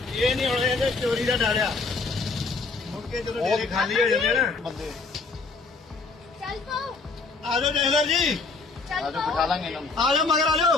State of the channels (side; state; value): right; quieter; 4.1 dB